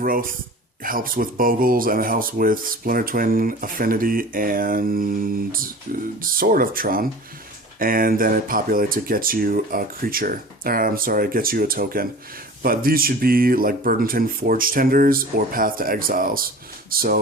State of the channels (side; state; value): both; normal; correlation 0.40